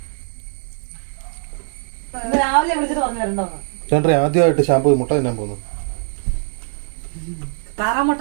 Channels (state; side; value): silent; left; digital silence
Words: രാവിലെ വിളിച്ചിട്ട് പറഞ്ഞു തരണ്ടോന്ന്. ചേട്ടൻ ആദ്യമായിട്ട് ഷാമ്പൂ മുട്ട തിന്നാൻ പോകുന്നു.